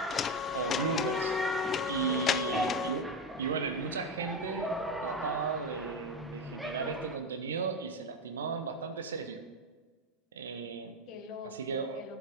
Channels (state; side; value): normal; both; correlation 0.13